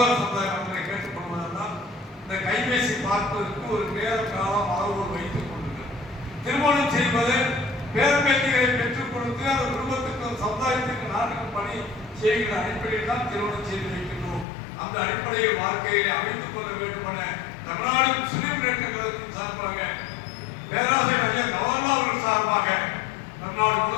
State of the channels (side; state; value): right; drops out; at 14.5 s